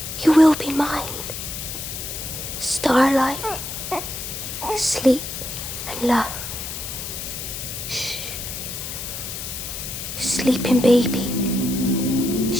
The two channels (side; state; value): left; noise; hiss, 7 dB below the sound